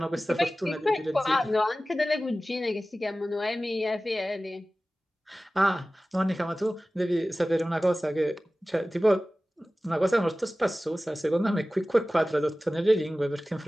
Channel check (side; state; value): both; normal; correlation 0.96